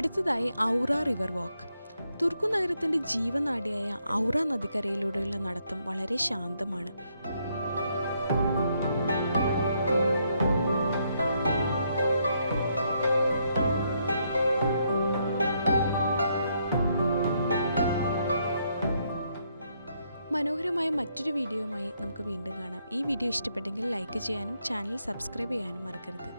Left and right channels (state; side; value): inverted; both; correlation -0.75